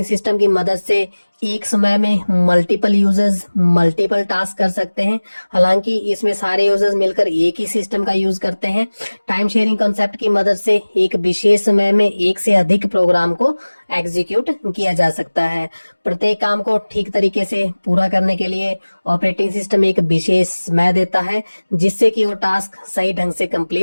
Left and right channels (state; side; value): inverted; both; correlation -1.00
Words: सिस्टम की मदद से एक समय में मल्टीपल यूजर्स मल्टीपल टास्क कर सकते हैं। हालांकि इसमें सारे यूजर्स मिलकर एक ही सिस्टम का यूज करते हैं। टाइम शेयरिंग कॉन्सेप्ट की मदद से एक विशेष समय में एक से अधिक प्रोग्राम को एग्जीक्यूट किया जा सकता है। प्रत्येक काम को ठीक तरीके से पूरा करने के लिए ऑपरेटिंग सिस्टम एक विशेष समय देता है, जिससे कि वो टास्क सही ढंग से